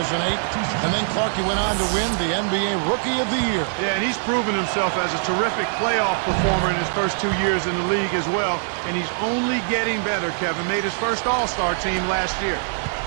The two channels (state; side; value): silent; left; digital silence